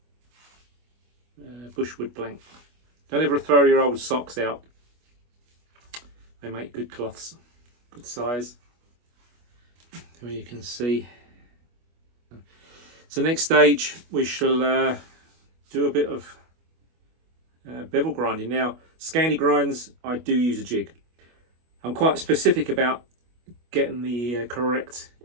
Bushwood blank. Don't ever throw your old socks out. They make good cloths, good size. Here you can see. So next stage we shall do a bit of bevel grinding. Now, Scandi grinds, I do use a jig. I'm quite specific about getting the correct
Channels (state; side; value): late; left; 25 ms